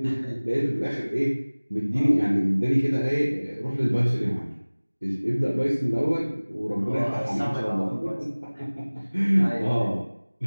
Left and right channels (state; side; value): inverted; both; correlation -1.00